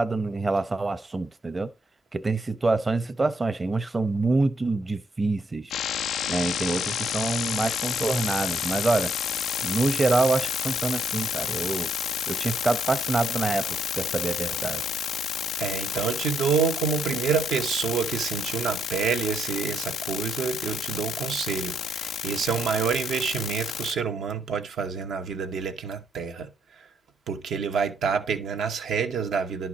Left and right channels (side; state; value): both; normal; correlation 0.72